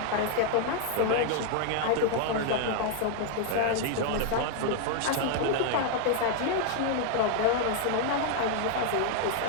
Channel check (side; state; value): both; different; correlation 0.00